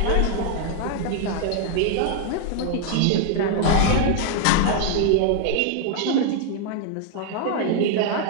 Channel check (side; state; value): both; different; correlation 0.00